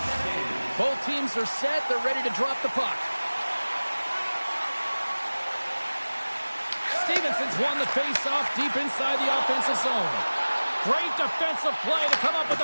Both teams are set. They're ready to drop the puck. Stevenson's won the face-off deep inside the offensive zone. Great defensive play to come up with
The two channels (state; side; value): inverted; both; correlation -1.00